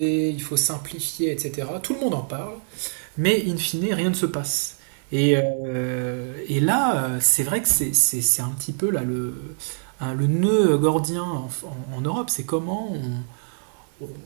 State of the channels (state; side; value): silent; left; digital silence